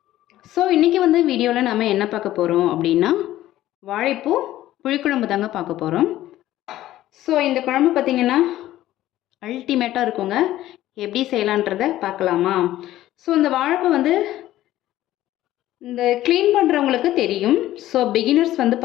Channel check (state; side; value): quieter; right; 14.3 dB